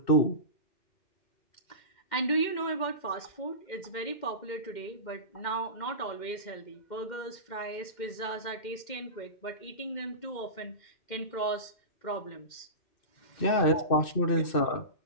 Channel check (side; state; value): right; late; 2.1 ms